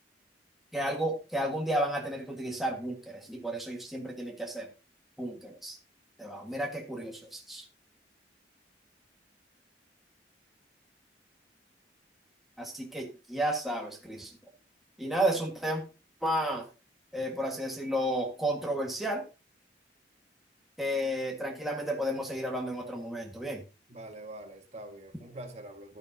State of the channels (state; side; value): normal; both; correlation 0.60